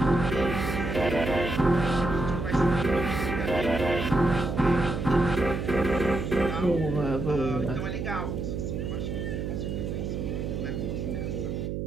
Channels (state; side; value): noise; right; hum, 3 dB below the sound